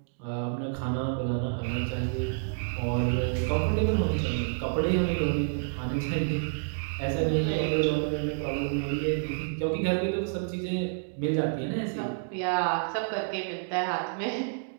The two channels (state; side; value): silent; left; digital silence